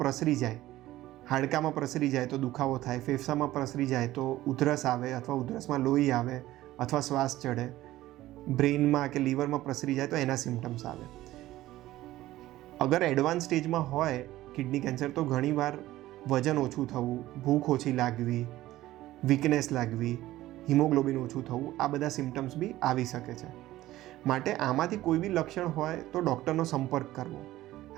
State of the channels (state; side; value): quieter; left; 15.6 dB